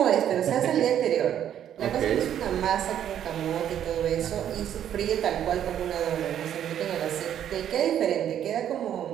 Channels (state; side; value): quieter; left; 10.2 dB